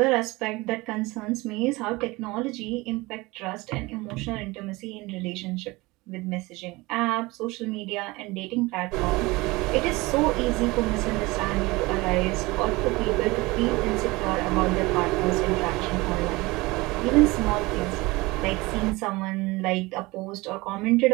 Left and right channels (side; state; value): left; quieter; 22.3 dB